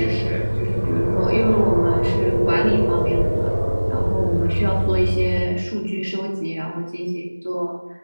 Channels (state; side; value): inverted; both; correlation -1.00